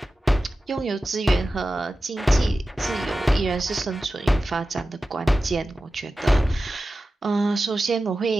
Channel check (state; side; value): normal; both; correlation 0.94